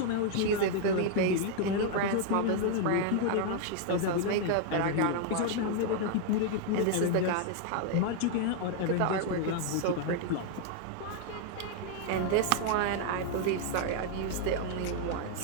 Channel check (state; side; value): different; both; correlation 0.00